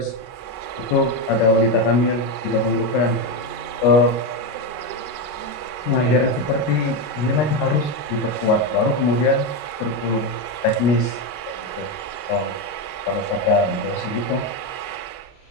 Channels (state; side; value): late; right; 33 ms